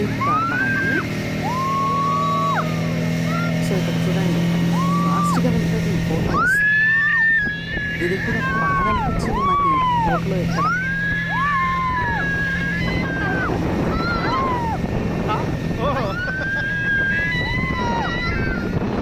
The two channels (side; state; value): both; identical; correlation 1.00